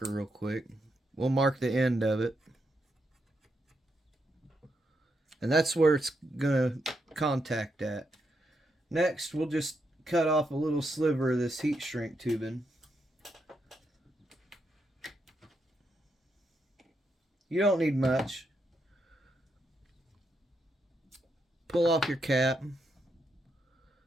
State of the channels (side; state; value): both; normal; correlation 0.81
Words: real quick. We'll mark the end of it. And that's where it's going to contact at. Next, we'll just cut off a little sliver of this heat shrink tubing. You don't need much. Pull off your cap.